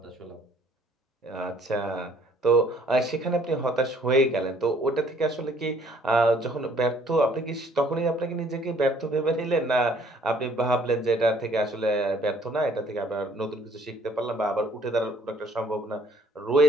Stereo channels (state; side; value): normal; both; correlation 0.60